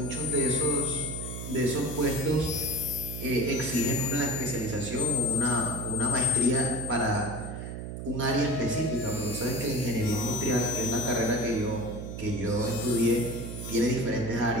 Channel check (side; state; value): right; noise; hum, 7 dB below the sound